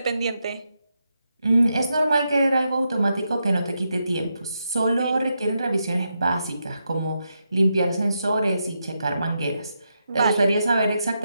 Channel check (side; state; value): both; inverted; correlation -0.84